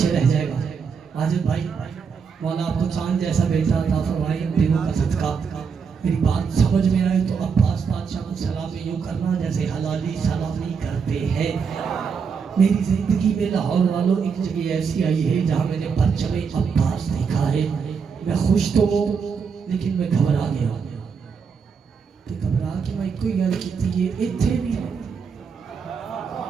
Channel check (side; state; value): left; quieter; 6.0 dB